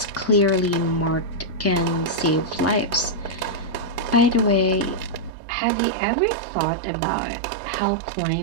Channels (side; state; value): left; drops out; at 5.3 s